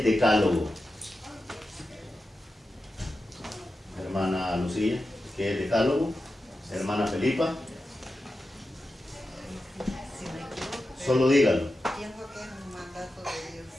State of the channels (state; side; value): normal; both; correlation 0.91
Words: decálogo. Hermana Lucía, ¿qué es decálogo? Hermana Felipa. Solo dígalo. Pienso que es un mandato de Dios.